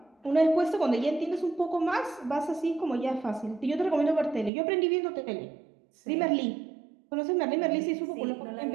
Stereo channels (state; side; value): drops out; left; at 4.5 s